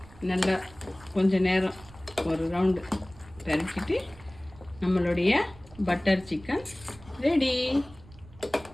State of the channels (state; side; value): noise; right; rumble, 21 dB below the sound